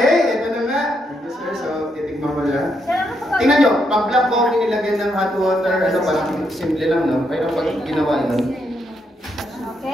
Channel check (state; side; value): normal; both; correlation 0.78